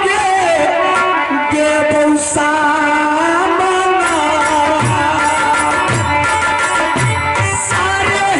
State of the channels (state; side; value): identical; both; correlation 1.00